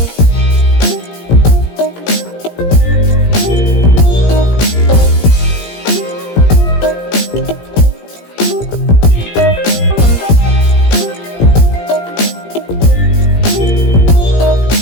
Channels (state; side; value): late; right; 17 ms